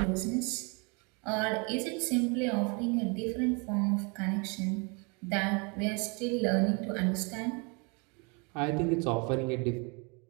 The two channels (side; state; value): left; quieter; 32.2 dB